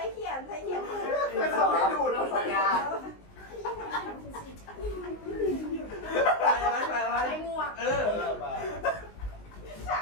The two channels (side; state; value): right; late; 19 ms